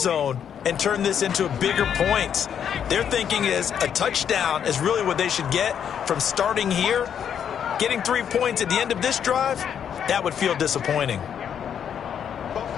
and turn this into bigger points. Their thinking is a touchdown is really what they should get from starting here. Getting 3 points at the end of this drive, that would feel disappointing.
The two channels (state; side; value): quieter; right; 8.5 dB